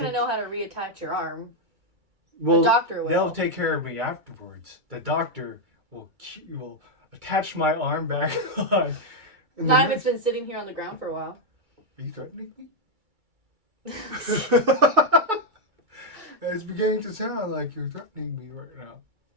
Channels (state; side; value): late; left; 2.3 ms